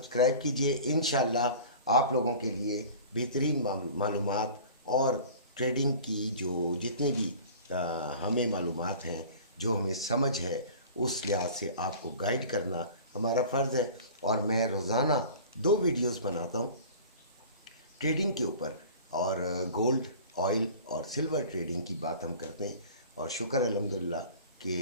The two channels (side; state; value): both; inverted; correlation -0.42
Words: कीजिए। इंशाल्लाह आप लोगों के लिए बेहतरीन मालूमात और ट्रेडिंग की जो जितनी भी हमें मालूमात हैं, जो हमें समझ है, उस लिहाज से आपको गाइड करना हमारा फ़र्ज़ है। और मैं रोज़ाना 2 वीडियोस बनाता हूँ ट्रेडिंग के ऊपर, और गोल्ड, ऑयल और सिल्वर ट्रेडिंग की बात हम करते हैं। और शुक्र अल्हम्दुलिल्लाह